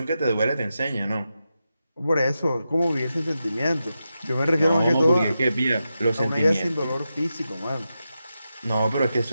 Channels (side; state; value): both; inverted; correlation -0.89